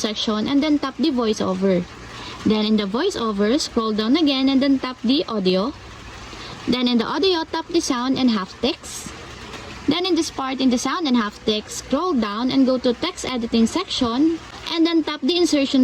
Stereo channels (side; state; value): both; identical; correlation 1.00